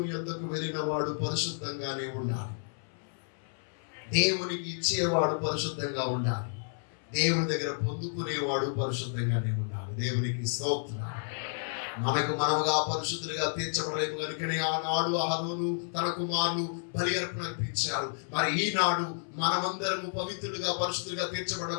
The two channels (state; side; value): silent; right; 57 dB below the other